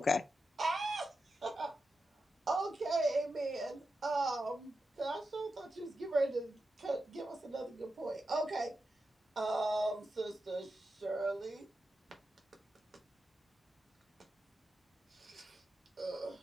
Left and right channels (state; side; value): normal; both; correlation 0.89